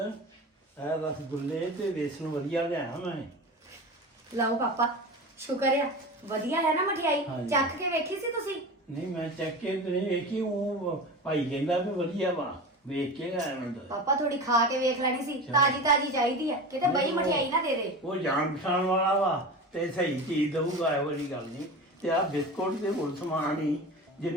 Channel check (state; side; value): normal; both; correlation 0.30